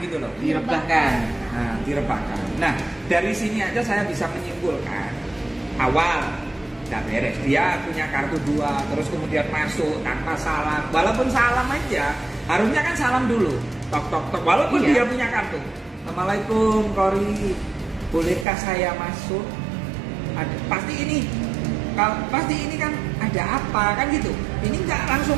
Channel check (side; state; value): left; drops out; at 18.4 s